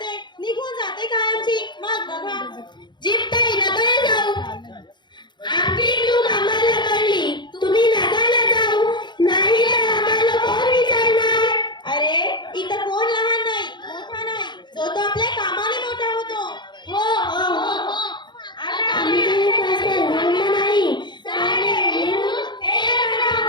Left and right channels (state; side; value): late; right; 0.22 ms